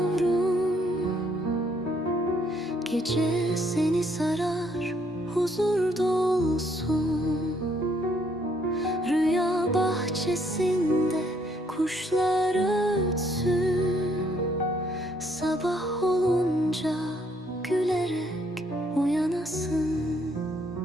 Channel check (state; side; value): normal; both; correlation 0.68